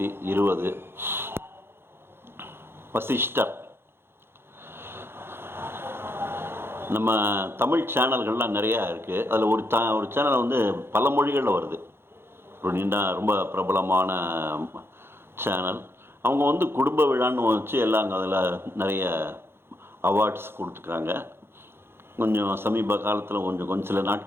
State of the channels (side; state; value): left; late; 0.11 ms